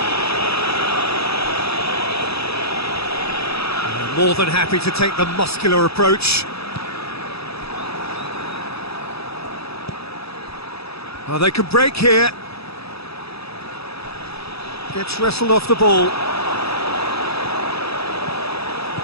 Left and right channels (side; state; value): right; late; 0.78 ms